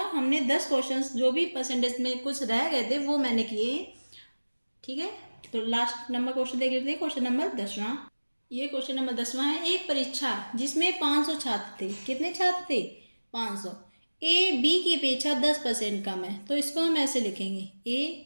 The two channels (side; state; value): both; inverted; correlation -1.00